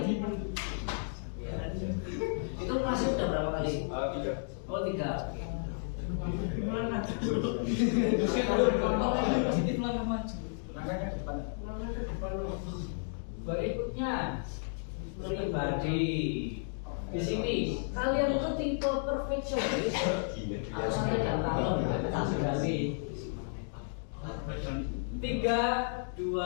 Itu masih udah berapa kali? 3. Oh, 3. Berikutnya pribadi. Di sini kalian itu tipe perfeksionis atau santai dan kalem? 3,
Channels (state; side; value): silent; right; digital silence